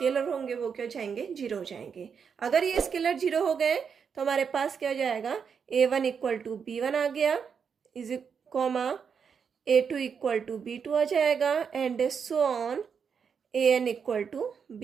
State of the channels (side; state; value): left; quieter; 6.6 dB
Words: होंगे वो क्या हो जाएंगे, 0 हो जाएंगे। अगर ये स्केलर 0 हो गए तो हमारे पास क्या हो जाएगा, a1 इक्वल टू b1 आ गया, is comma a2 equal to b2 आ जाएगा and so on an equal to